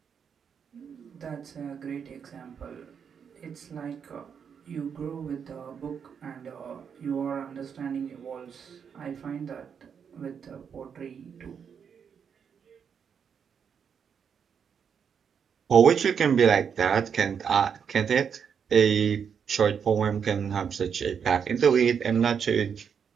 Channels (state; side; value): quieter; left; 7.1 dB